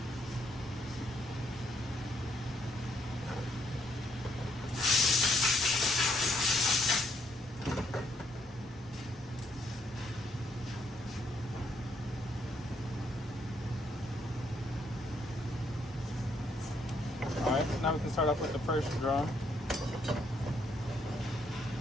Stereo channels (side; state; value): both; normal; correlation 0.72